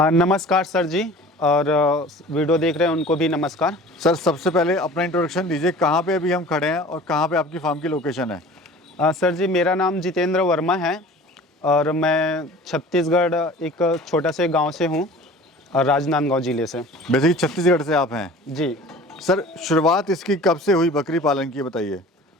नमस्कार सर जी, और वीडियो देख रहे हैं उनको भी नमस्कार। सर सबसे पहले अपना इंट्रोडक्शन दीजिए, कहाँ पे अभी हम खड़े हैं और कहाँ पे आपकी फार्म की लोकेशन है? सर जी, मेरा नाम जितेंद्र वर्मा है और मैं छत्तीसगढ़ एक छोटा से गांव से हूं, राजनांदगांव ज़िले से। बेसिकली छत्तीसगढ़ से आप हैं? जी। सर शुरुआत इसकी कब से हुई बकरी पालन की, बताइए।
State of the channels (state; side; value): normal; both; correlation 0.43